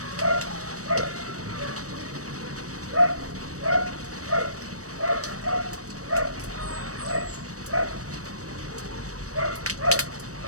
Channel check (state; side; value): late; left; 0.66 ms